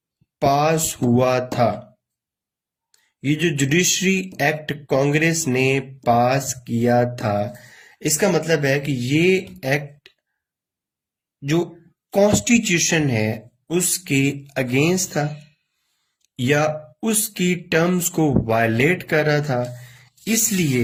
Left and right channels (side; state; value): both; identical; correlation 1.00